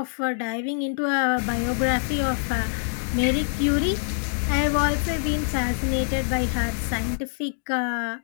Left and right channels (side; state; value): right; silent; digital silence